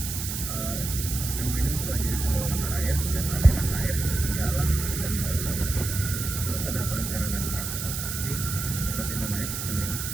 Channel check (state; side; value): noise; right; hiss, 5 dB below the sound